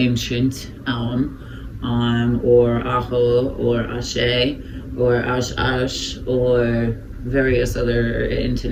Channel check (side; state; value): both; identical; correlation 1.00